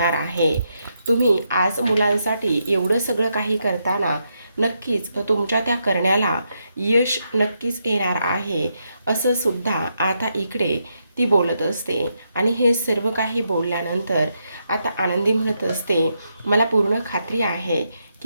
आहे. तुम्ही आज मुलांसाठी एवढं सगळं काही करताना नक्कीच तुमच्या त्या करण्याला यश नक्कीच येणार आहे, असं सुद्धा आता इकडे ती बोलत असते. आणि हे सर्व काही बोलल्यानंतर आता आनंदी म्हणत असते, मला पूर्ण खात्री आहे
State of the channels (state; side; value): inverted; both; correlation -0.81